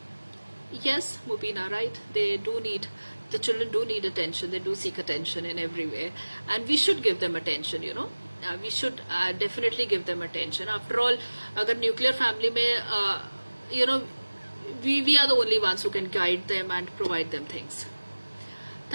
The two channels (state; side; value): inverted; both; correlation -1.00